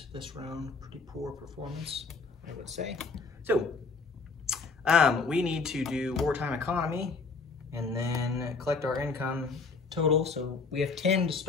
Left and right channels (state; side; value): quieter; right; 4.4 dB